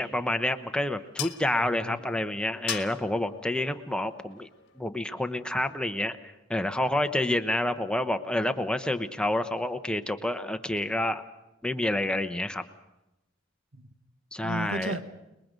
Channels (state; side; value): normal; both; correlation 0.81